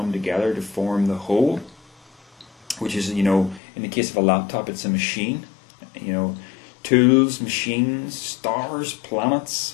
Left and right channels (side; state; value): right; drops out; at 3.6 s